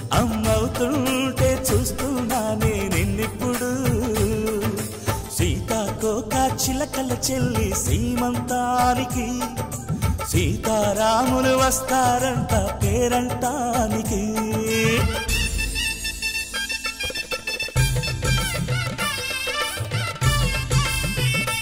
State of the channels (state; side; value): identical; both; correlation 1.00